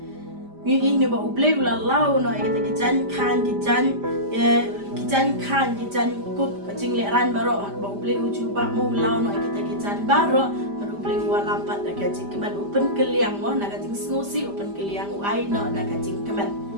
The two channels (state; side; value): late; left; 5.0 ms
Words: ni ni ba ublei u la lao no ka ta ki jan khan ki jan kup ka jing le ran ba ro ba ublei u chuba mo lao no ka ta ki jan ba ro ublei wa lampat da ka jing kemen open keliang mo na ka jing snosi open keliang u ai no na ka jing kemen